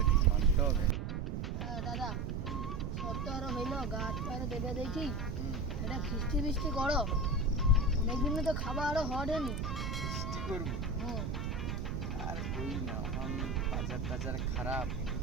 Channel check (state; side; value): noise; right; rumble, 3 dB below the sound